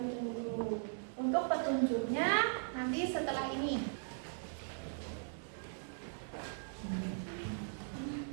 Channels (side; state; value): left; silent; 52 dB below the other